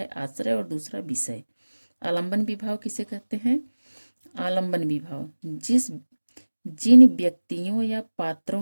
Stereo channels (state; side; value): inverted; both; correlation -1.00